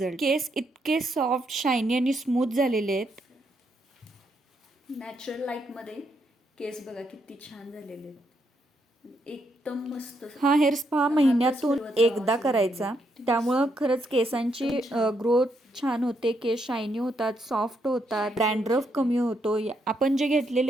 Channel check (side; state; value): both; normal; correlation 0.78